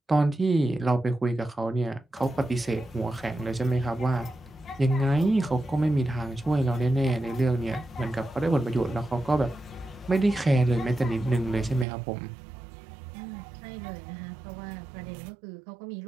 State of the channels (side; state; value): left; drops out; at 11.9 s